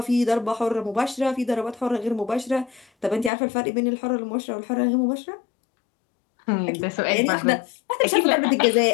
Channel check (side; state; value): right; drops out; at 3.3 s